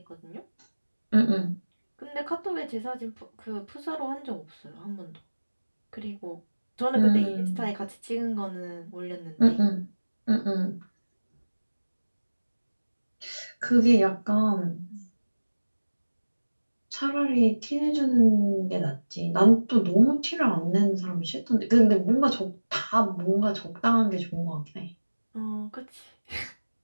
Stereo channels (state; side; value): inverted; both; correlation -1.00